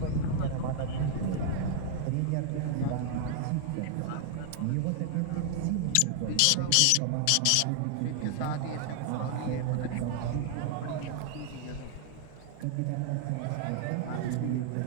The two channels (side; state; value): both; different; correlation 0.00